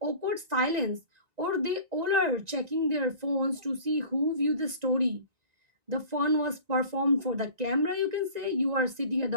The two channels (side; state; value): left; late; 1.9 ms